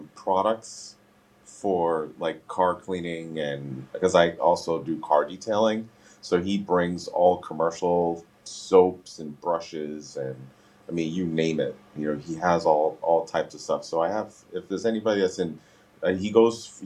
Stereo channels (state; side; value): identical; both; correlation 1.00